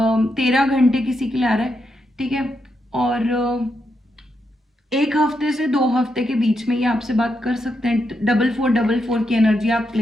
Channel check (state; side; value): normal; both; correlation 0.83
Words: 13 घंटे किसी के लिए आ रहा है। ठीक है, और 1 हफ्ते से 2 हफ्ते के बीच में ये आपसे बात कर सकते हैं। 4444 की एनर्जी आप